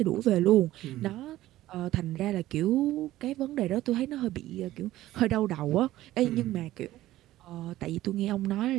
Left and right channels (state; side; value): quieter; left; 15.2 dB